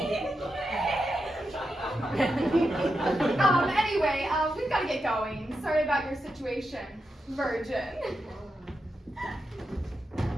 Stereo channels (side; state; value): both; normal; correlation 0.87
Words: Anyway, we've got to get going. Sorry about your situation, Virgin.